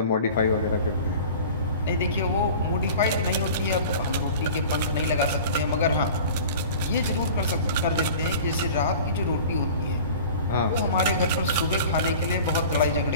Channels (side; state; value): both; inverted; correlation -0.40